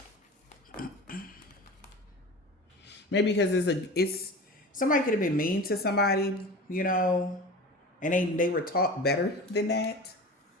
Maybe because it's somebody could have been mean to somebody, you know, and they were taught better than that.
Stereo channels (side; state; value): both; normal; correlation 0.34